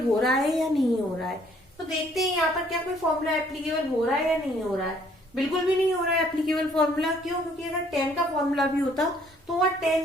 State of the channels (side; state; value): both; normal; correlation 0.62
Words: हो रहा है या नहीं हो रहा है। तो देखते हैं यहाँ पर क्या कोई फॉर्मूला एप्लीकेबल हो रहा है या नहीं हो रहा है। बिल्कुल भी नहीं हो रहा है एप्लीकेबल फॉर्मूला। क्यों? क्योंकि अगर 10 का फॉर्मूला भी होता तो वह